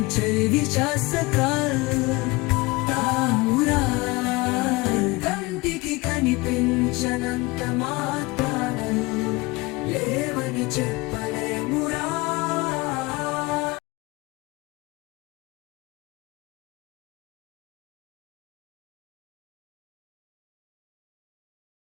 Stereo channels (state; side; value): quieter; right; 23.5 dB